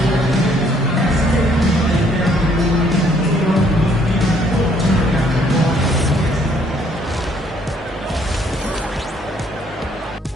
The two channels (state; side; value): normal; both; correlation 0.65